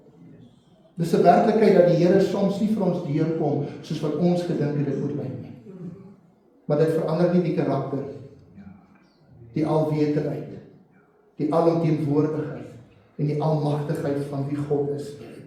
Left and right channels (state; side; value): identical; both; correlation 1.00